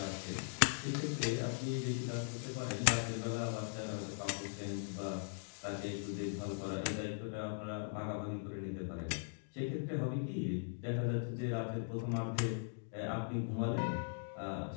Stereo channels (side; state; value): right; silent; digital silence